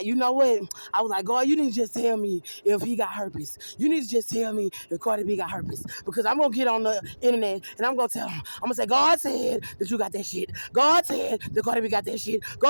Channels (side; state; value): both; inverted; correlation -1.00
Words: you know what? I was like, God, you need to just tell me if he got herpes. You need to just tell me if Cardi B got herpes. Because I'm going to get on the internet and I'm going to tell him. I'm going to say, God said that you got that shit. God said that Cardi B got that shit.